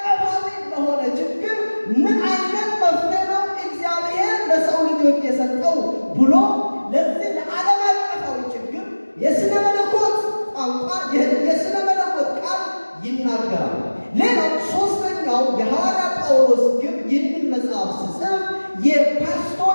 ለሆነ ችግር ምን አይነት መፍትሄ ነው እግዚአብሔር ለሰው ልጆች የሰጠው ብሎ ለዚህ ለዓለም አቀፋዊ ችግር የስነ መለኮት ቋንቋ የስነ መለኮት ቃል ይናገራል። ሌላው ሶስተኛው የሐዋርያ ጳውሎስ ግብ ይህንን መጽሐፍ ሲጽፍ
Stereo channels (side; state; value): both; inverted; correlation -1.00